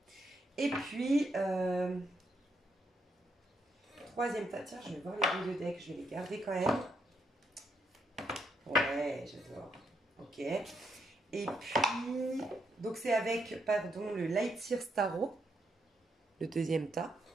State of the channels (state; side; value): normal; both; correlation 0.77